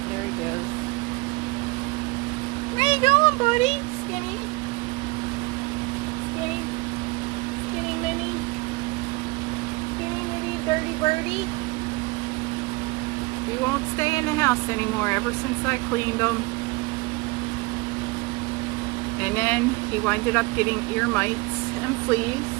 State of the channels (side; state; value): left; quieter; 24.0 dB